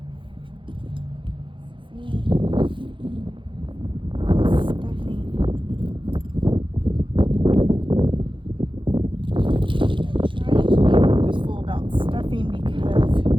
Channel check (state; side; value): late; left; 0.24 ms